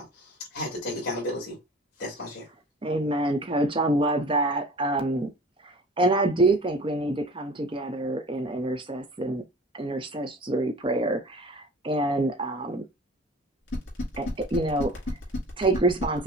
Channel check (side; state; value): both; normal; correlation 0.42